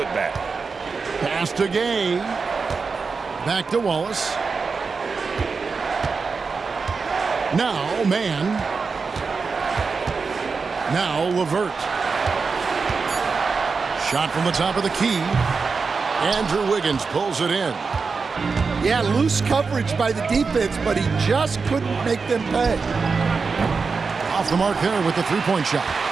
Pass to Gay. Back to Wallace. Now, man. Now, LeVert. Shot from the top of the key. Andrew Wiggins pulls it in. Yeah, loose coverage by the defense, but he just couldn't make them pay. Off the mark there with the three-point shot.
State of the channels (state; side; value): quieter; left; 4.8 dB